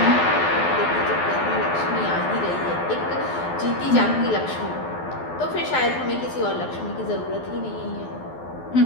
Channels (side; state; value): right; late; 12 ms